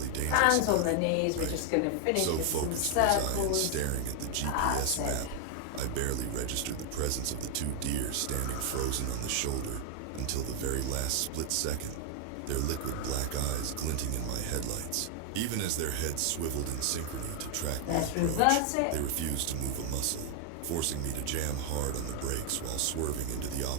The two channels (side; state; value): both; different; correlation 0.00